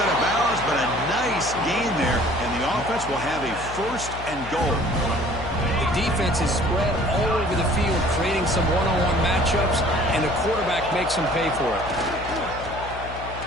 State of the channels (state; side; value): noise; left; hum, 12 dB below the sound